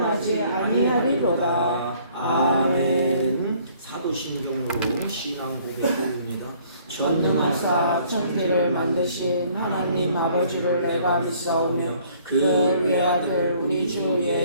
아니하리로다. 아멘. 사도신경으로 신앙 고백입니다. 전능하사 천지를 만드신 하나님 아버지를 내가 믿사오며 그 외아들 우리 주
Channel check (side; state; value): both; inverted; correlation -0.59